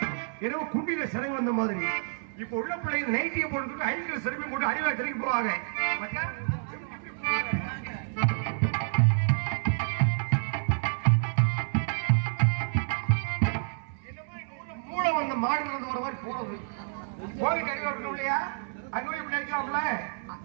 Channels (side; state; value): left; silent; 59 dB below the other